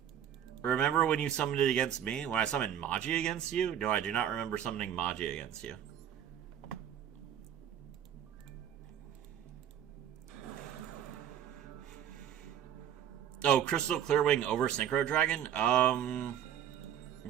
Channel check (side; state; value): left; quieter; 9.8 dB